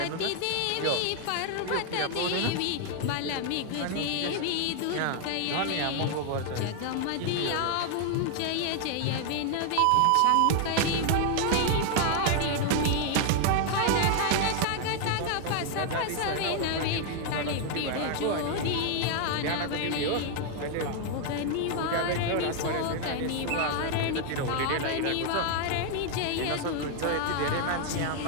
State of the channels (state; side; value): different; both; correlation 0.00